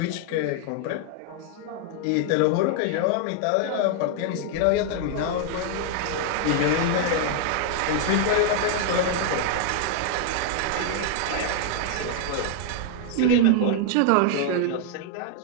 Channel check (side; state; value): both; different; correlation 0.00